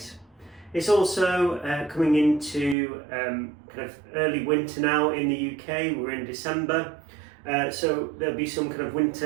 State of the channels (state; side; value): drops out; left; at 2.8 s